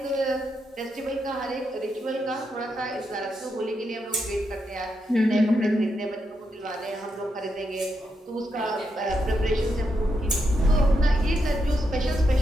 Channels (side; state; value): both; normal; correlation 0.83